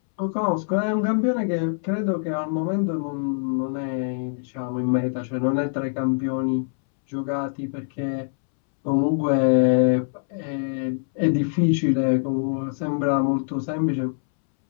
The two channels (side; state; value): right; silent; 63 dB below the other